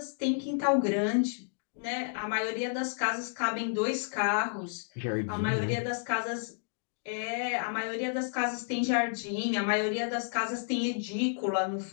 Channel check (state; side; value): silent; right; digital silence